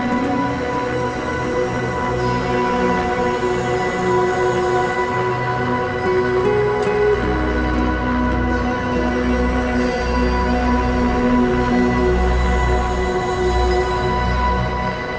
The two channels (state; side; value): identical; both; correlation 1.00